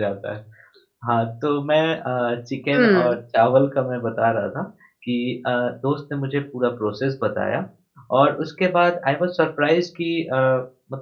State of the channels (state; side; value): identical; both; correlation 1.00